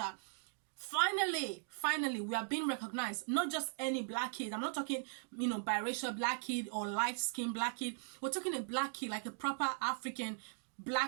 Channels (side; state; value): left; silent; digital silence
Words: finally we are being recognized? Not just any black kid. I'm not talking, biracial black kid or light skin black kid. We're talking a black kid, like a proper African